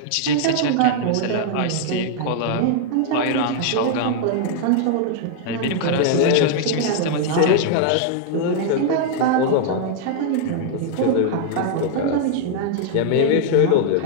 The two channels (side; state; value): both; different; correlation -0.01